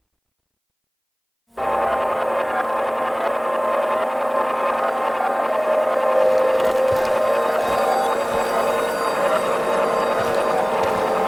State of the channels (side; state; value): both; identical; correlation 1.00